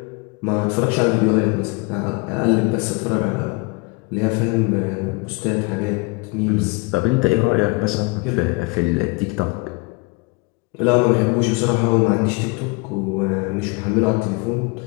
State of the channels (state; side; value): quieter; right; 28.5 dB